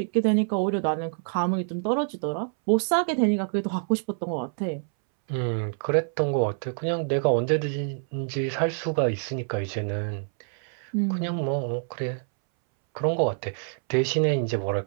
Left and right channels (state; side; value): silent; left; 61 dB below the other